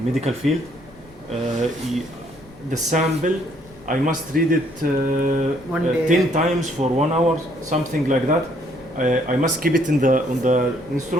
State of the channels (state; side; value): noise; left; rumble, 25 dB below the sound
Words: medical field. The sample, I must read it One day. 10 times for 1 hour, something like that. I must keep it on the